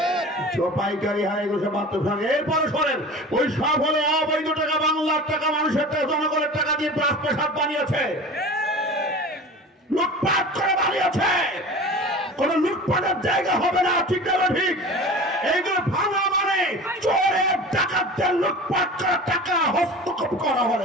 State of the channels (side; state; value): both; normal; correlation 0.36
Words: পাইকারি হয় এগুলো সব বাথরুম এরপরে শোনেন ওই সব হলে অবৈধ টাকা বাংলার টাকা মানুষের টাকা জনগণের টাকা দিয়ে রাজপ্রাসাদ বানিয়েছে লুটপাট করে বানিয়েছে কোন লুটপাটের জায়গা হবে না ঠিক না ঠিক এইগুলো ভাঙা মানে চোরের ডাকাতদের লুটপাট করা টাকা হস্তক্ষেপ করা